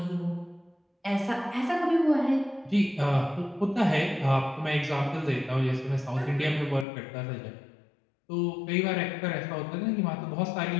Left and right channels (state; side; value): drops out; right; at 6.9 s